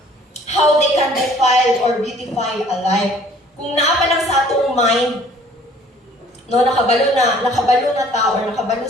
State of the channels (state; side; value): normal; both; correlation 0.55